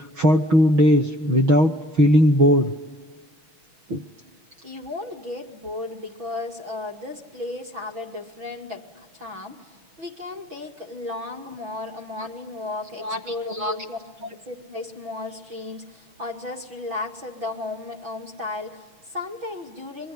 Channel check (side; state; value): left; late; 6.0 ms